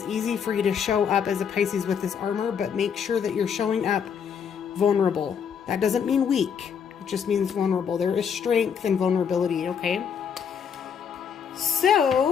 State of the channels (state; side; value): quieter; right; 7.3 dB